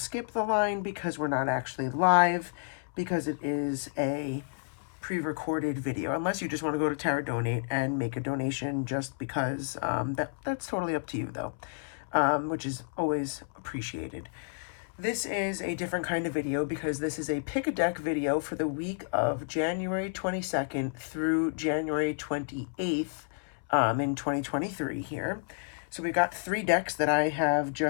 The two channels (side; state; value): right; silent; 57 dB below the other